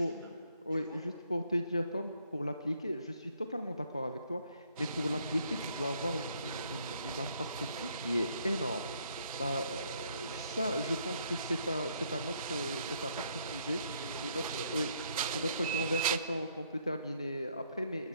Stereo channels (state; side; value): inverted; both; correlation -0.68